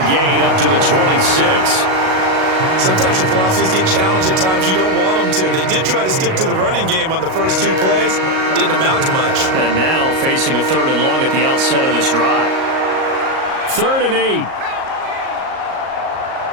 gain up to the 26. Sometimes your philosophies get challenged at times you don't want them to. They did try to stick to the running game on the first 2 plays. Didn't amount to much. And now facing a 3rd and long at the outset of this drive. 3rd and 8.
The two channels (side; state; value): left; late; 38 ms